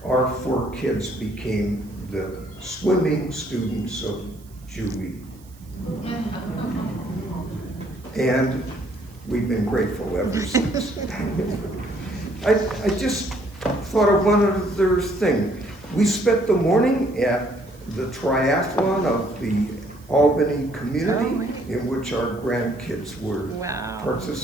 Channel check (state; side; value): noise; right; hiss, 27 dB below the sound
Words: our 4 kids became the swimming students of Julie. And we've been grateful ever since. I just thought of one other thing. We spent the morning at the triathlon of the Albany community, in which our grandkids were